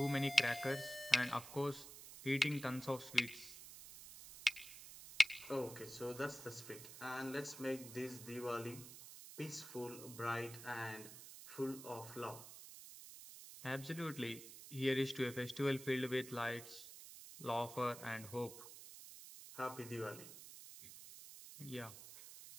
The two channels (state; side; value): noise; right; hiss, 13 dB below the sound